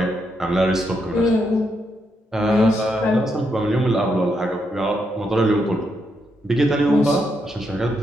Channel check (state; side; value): normal; both; correlation 0.80